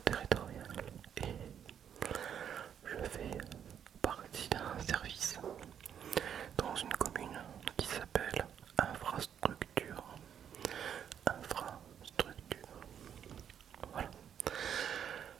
territorial et je fais partie d'un service dans une commune qui s'appelle infrastructure. Infrastructure. Voilà.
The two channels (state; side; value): quieter; left; 8.7 dB